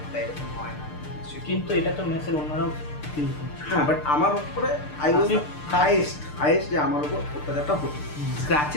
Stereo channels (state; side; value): late; right; 6.7 ms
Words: না, তাই এরকম হয় না। কিন্তু এটা তো মেসের অন্যরাও ফিল করছে। হ্যাঁ, বাট আমার উপরে আই ওয়াজ হাইয়েস্ট যে আমার উপর অত্যাচারটা হতো,